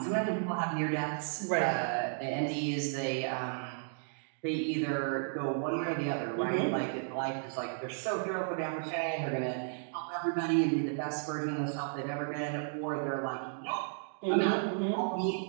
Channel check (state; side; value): silent; left; digital silence